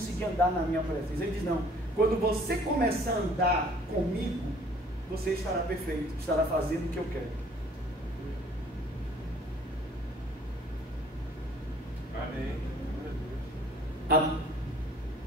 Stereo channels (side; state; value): both; normal; correlation 0.55